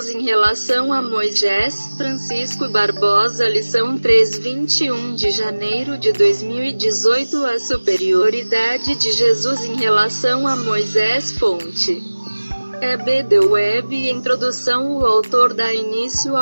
em relação a Moisés. Francisco Barbosa. Lição 3, 21 de janeiro de 2018. A superioridade de Jesus em relação a Moisés. Fonte: E.B. The Web. Introdução. O autor dá início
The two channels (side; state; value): both; inverted; correlation -1.00